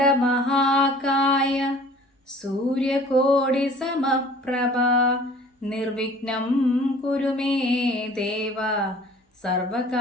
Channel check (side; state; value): both; normal; correlation 0.49